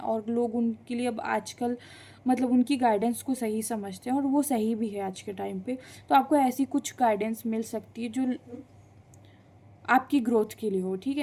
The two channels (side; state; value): both; identical; correlation 1.00